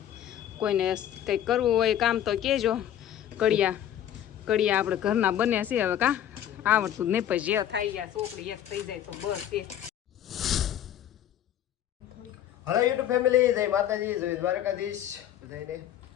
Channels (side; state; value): right; quieter; 10.9 dB